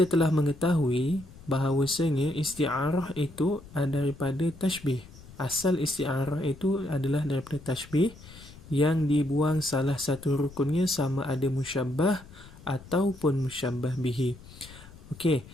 telah mengetahui bahawasanya isti'arah itu daripada tashbih. Asal isti'arah itu adalah daripada tashbih yang dibuang salah satu rukunnya sama ada musyabbah ataupun musyabbah bihi. Okey,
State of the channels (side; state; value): left; noise; rumble, 19 dB below the sound